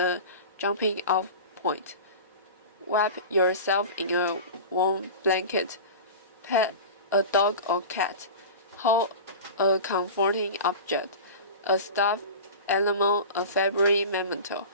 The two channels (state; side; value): inverted; both; correlation -0.32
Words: jumping off point. Wrap yourself in a warm blanket. Pet a dog or cat. Hold a comforting object, a stuffed animal, a favorite memento.